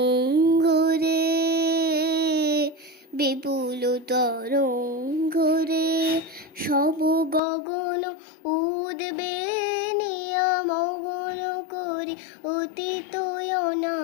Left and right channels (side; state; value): right; drops out; at 7.4 s